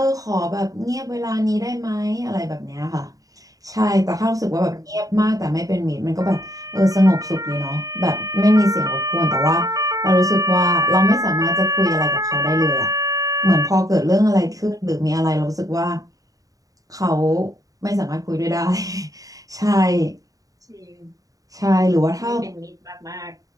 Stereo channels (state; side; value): late; left; 0.17 ms